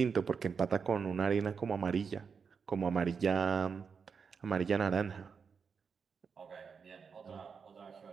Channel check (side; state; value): left; quieter; 5.9 dB